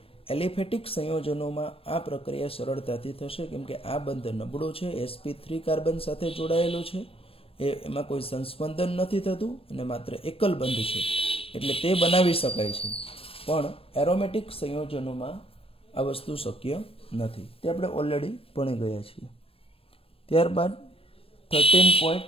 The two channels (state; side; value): late; right; 0.28 ms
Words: એલિફેટિક સંયોજનોમાં આ પ્રક્રિયા સરળતાથી થશે કેમ કે આ બંધ નબળો છે, sp3 કાર્બન સાથે જોડાયેલો છે, એમાં કોઈ સંસ્પંદન નથી થતું અને માત્ર એકલ બંધ છે એટલે તે બનાવી શકાય છે. પણ એરોમેટિક સંયોજનોમાં આ વસ્તુ શક્ય નથી, તે આપણે ઓલરેડી ભણી ગયા છીએ. ત્યારબાદ